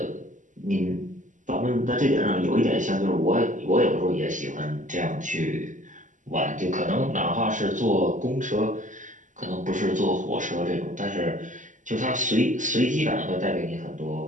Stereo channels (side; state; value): left; late; 0.37 ms